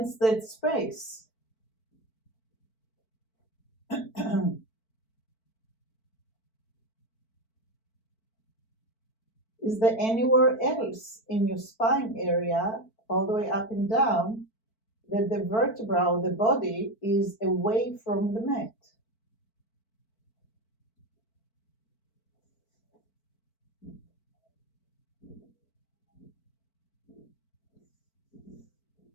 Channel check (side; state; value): right; late; 4.5 ms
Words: that space? Is there anywhere else in your spine area, all the way up and down, that the vertebra or the body is away from the mat?